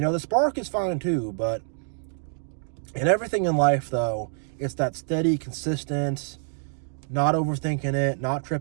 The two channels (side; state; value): left; silent; 61 dB below the other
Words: spark is fine too, but in everything in life, though, it's that steady, consistent, not overthinking it, not